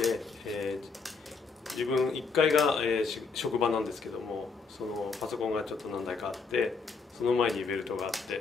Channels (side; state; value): right; quieter; 4.8 dB